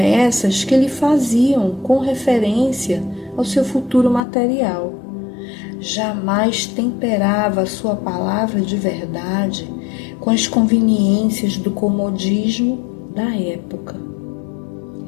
que lhe faziam com referência ao seu futuro material. Jamais temperava a sua palavra de verdade com as conveniências do comodismo da época.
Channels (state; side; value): drops out; right; at 4.2 s